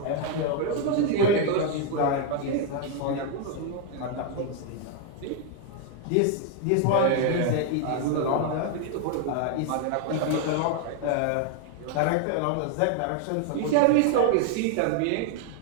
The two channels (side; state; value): both; different; correlation 0.00